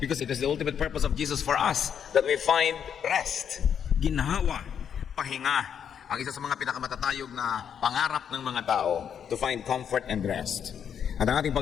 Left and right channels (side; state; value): right; quieter; 8.1 dB